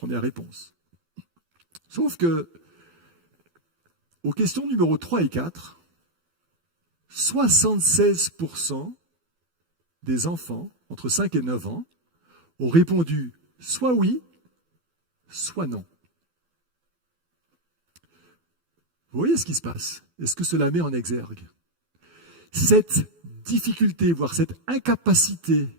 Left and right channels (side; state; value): left; late; 12 ms